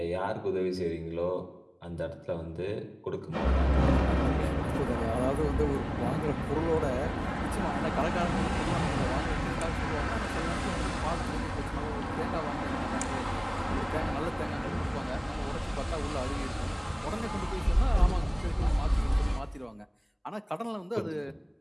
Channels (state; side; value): identical; both; correlation 1.00